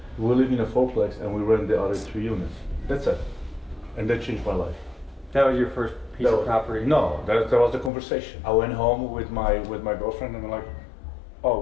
we live in a fourplex and we rent the other 3 units. That's it. And that changed my life. That was your first piece of property? No, that was the conversation. I went home with my girlfriend and we're like,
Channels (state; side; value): drops out; right; at 7.9 s